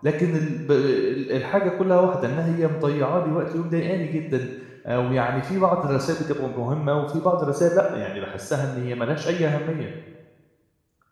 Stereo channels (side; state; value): both; identical; correlation 1.00